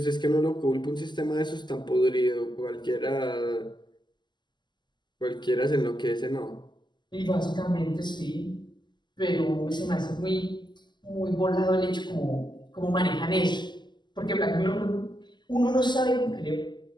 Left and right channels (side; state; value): right; late; 0.21 ms